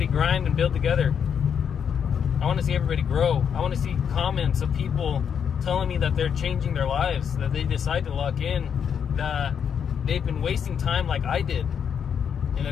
grind and build together. I want to see everybody grow. I want to see comments of people telling me that they're changing their lives, that they decide to lock in, that they've been wasting time like I did, and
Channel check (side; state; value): right; quieter; 7.6 dB